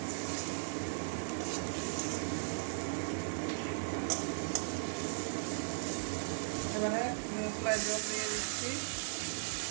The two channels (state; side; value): silent; left; digital silence